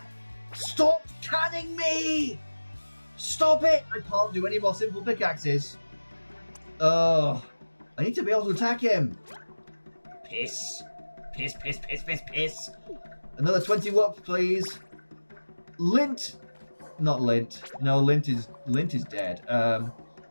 Stop canning me! Stop it! I can't do any more simple pickaxes. Ugh. I need to be able to attack him. Piss. Piss, piss, piss, piss, piss. Another 20 whoops, please. Lint. Not Lint. No, Lint is dead. Oh,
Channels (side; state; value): both; inverted; correlation -1.00